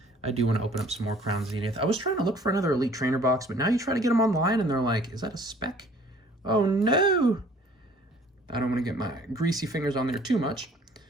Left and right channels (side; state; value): both; normal; correlation 0.54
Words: I do want to open up some more Crown Zenith. I was trying to look for another Elite Trainer box, but now you try to get them online and they're like, is that a spec? Oh no! I don't want to get my greasy fingers on there too much.